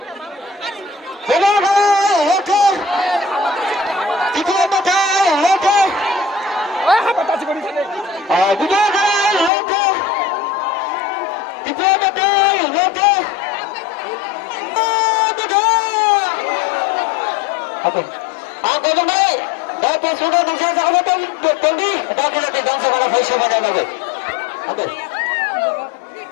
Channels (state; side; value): drops out; right; at 9.5 s